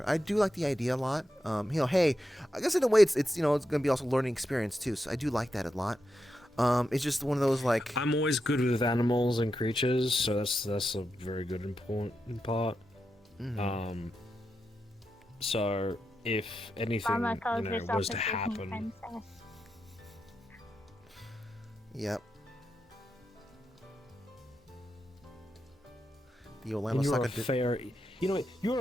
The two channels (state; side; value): normal; both; correlation 0.87